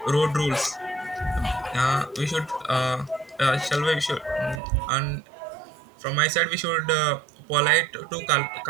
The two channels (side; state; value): left; drops out; at 4.6 s